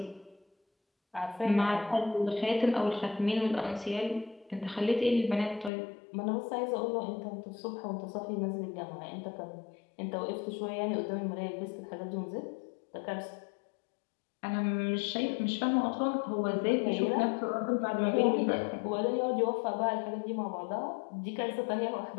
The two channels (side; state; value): right; drops out; at 5.7 s